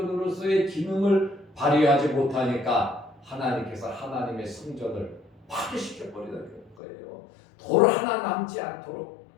기능을 발휘하지 못하니까 하나님께서 하나님의 성전을 파괴시켜버리는 거예요. 돌 하나 남지 않도록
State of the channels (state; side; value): drops out; right; at 6.8 s